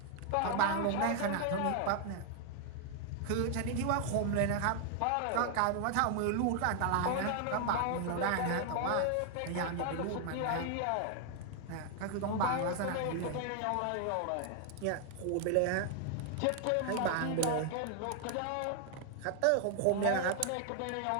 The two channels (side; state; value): both; different; correlation 0.00